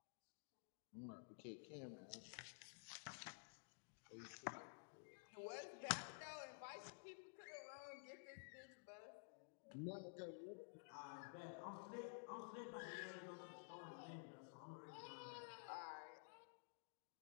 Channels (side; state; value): right; silent; digital silence